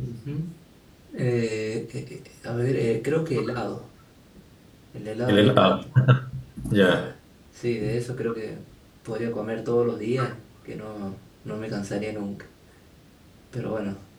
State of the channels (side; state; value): both; identical; correlation 1.00